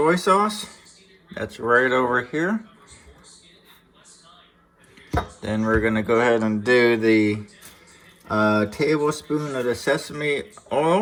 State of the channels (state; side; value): identical; both; correlation 1.00